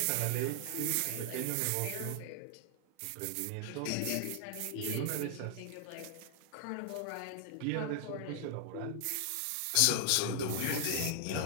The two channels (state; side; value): different; both; correlation 0.00